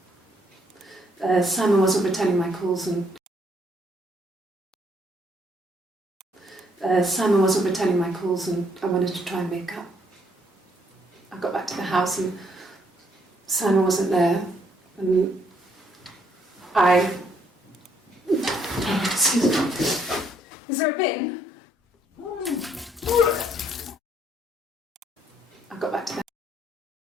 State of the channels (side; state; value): both; normal; correlation 0.70